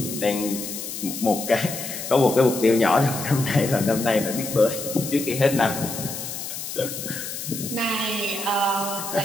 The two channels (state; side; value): noise; left; hiss, 7 dB below the sound